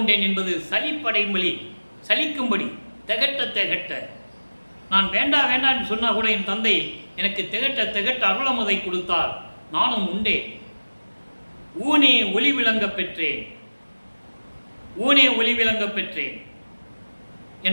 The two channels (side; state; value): both; inverted; correlation -1.00